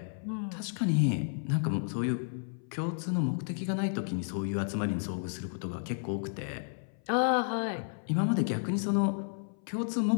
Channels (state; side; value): silent; right; 56 dB below the other